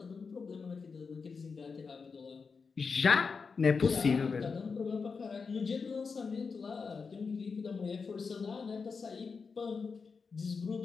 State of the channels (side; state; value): right; quieter; 5.1 dB